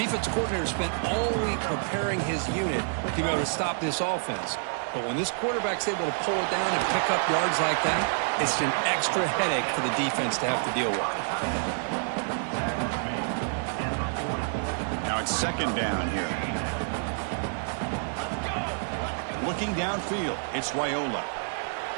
coordinator spent all week preparing his unit to be able to stop this offense. But when this quarterback's able to pull it down and pick up yards like that, it's an extra headache for the defense to have to deal with. Now it's 2nd down here. Looking downfield, it's Raiola.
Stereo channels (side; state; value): left; silent; 59 dB below the other